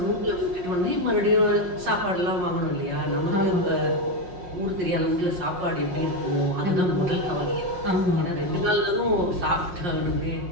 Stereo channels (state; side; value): late; left; 5.6 ms